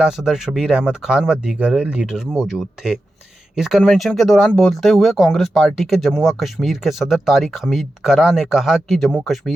सदर शबीर अहमद खान व दीगर लीडर मौजूद थे। इस कन्वेंशन के दौरान बोलते हुए कांग्रेस पार्टी के जम्मू व कश्मीर के सदर तारिक हमीद कर्रा ने कहा कि जम्मू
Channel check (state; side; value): normal; both; correlation 0.91